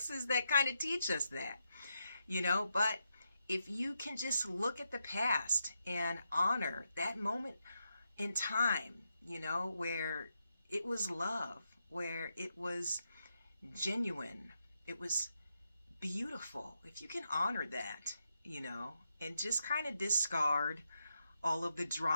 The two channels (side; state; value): both; inverted; correlation -0.84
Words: that kind of teach us that, but if you can just look at the past and honor that moment in time, where it was love, where it was genuine, it was beautiful. If you can honor that, and just kind of discard all of the